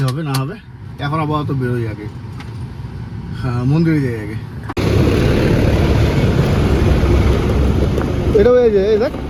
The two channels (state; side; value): identical; both; correlation 1.00